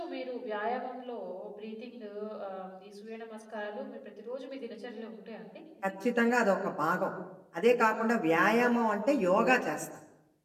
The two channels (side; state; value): both; identical; correlation 1.00